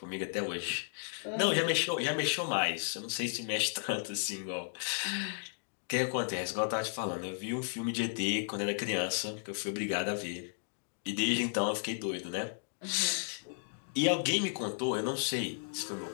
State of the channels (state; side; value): silent; right; digital silence